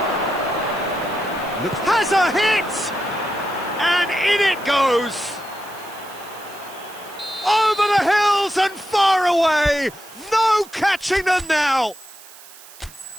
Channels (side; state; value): right; noise; hiss, 20 dB below the sound